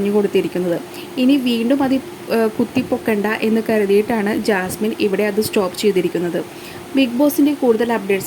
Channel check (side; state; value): both; identical; correlation 1.00